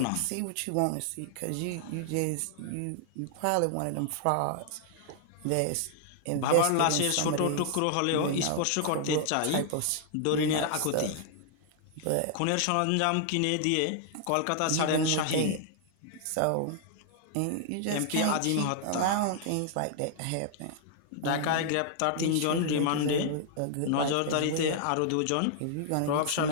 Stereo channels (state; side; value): different; both; correlation -0.01